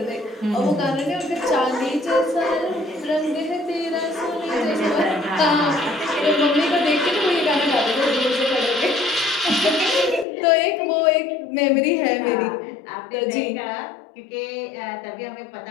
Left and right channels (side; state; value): right; drops out; at 10.2 s